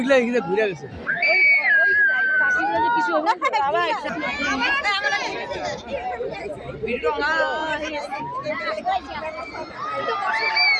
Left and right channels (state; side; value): identical; both; correlation 1.00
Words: এখানে ঘুরে গেছে কিছু হবে আবার ভিডিও না